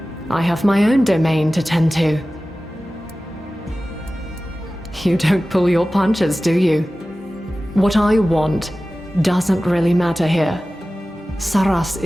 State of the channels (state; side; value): normal; both; correlation 0.96